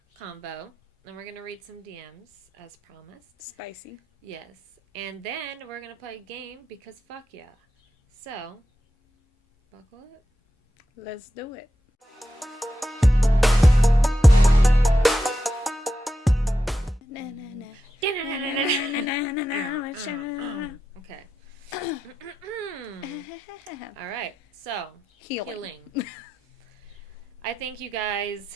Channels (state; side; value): normal; both; correlation 0.89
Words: combo. And we're going to read some DMs as promised. Spicy. Yes. And then we're going to play a game because fuck yeah. So, buckle up. Let's do it. Okay. All right. So, healing. I think you guys...